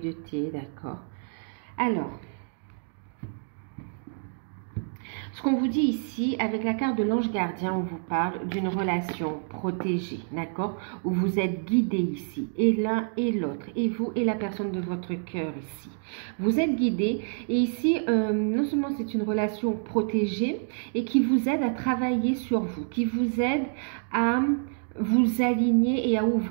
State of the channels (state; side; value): silent; left; 60 dB below the other